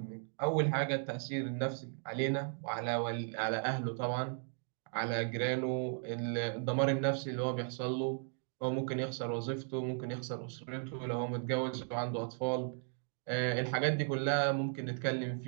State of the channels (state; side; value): silent; left; 54 dB below the other